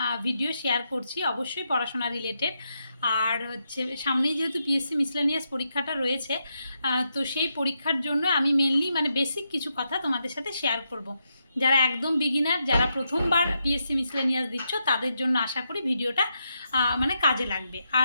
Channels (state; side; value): inverted; both; correlation -0.83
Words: ভিডিও শেয়ার করছি, অবশ্যই পড়াশোনা রিলেটেড। আর হচ্ছে সামনেই যেহেতু পিএসসি মিসলেনিয়াস পরীক্ষাটা রয়েছে, তো সেই পরীক্ষার জন্য আমি মেনলি বেসিক কিছু কথা তোমাদের সাথে শেয়ার করব। যারা একদম বিগিনার, যারা প্রথমবার পিএসসি মিসলেনিয়াস দিচ্ছ, তাদের জন্য আশা করি ভিডিওটা কাজে লাগবে।